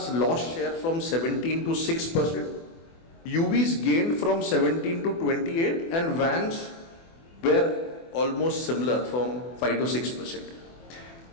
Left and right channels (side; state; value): right; late; 24 ms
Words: lost share from 17 to 6%, UVs gained from 17 to 28, and vans were almost similar from 5 to 6%.